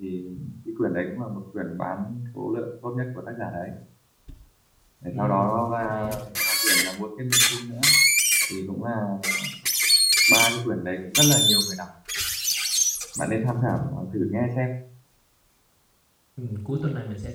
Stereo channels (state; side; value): identical; both; correlation 1.00